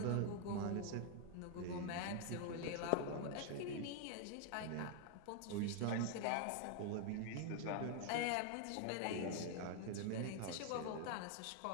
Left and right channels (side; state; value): both; different; correlation 0.00